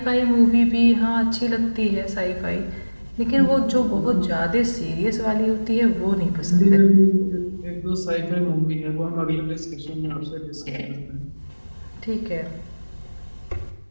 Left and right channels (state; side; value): inverted; both; correlation -1.00